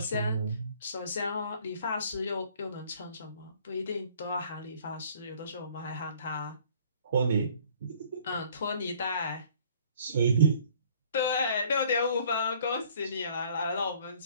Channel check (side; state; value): both; inverted; correlation -0.55